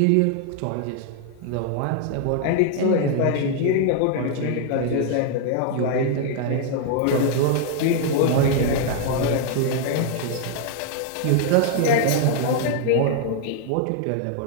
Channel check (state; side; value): different; both; correlation 0.00